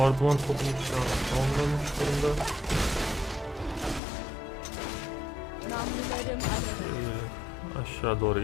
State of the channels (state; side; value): drops out; right; at 4.0 s